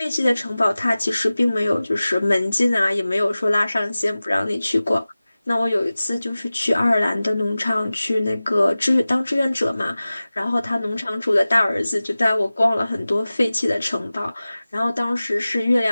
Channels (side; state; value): both; inverted; correlation -0.97